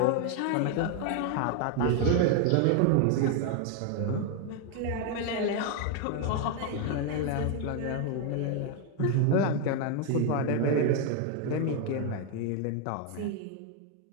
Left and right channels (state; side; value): different; both; correlation 0.01